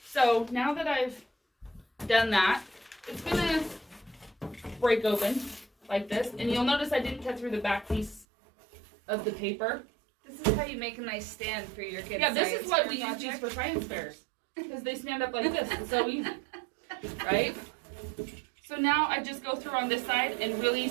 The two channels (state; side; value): drops out; left; at 8.2 s